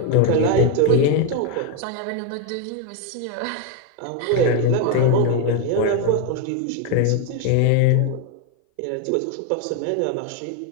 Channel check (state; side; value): different; both; correlation 0.01